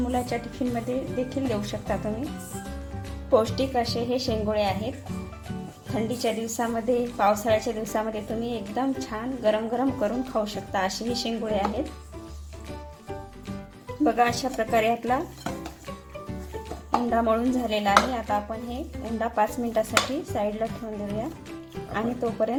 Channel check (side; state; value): both; identical; correlation 1.00